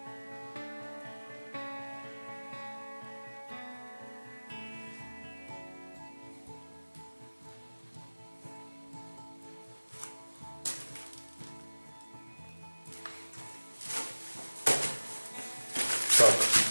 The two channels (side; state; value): both; inverted; correlation -1.00